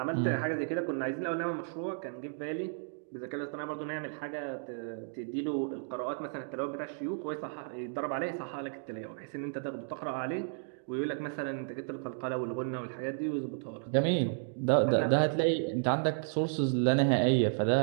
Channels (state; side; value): silent; left; digital silence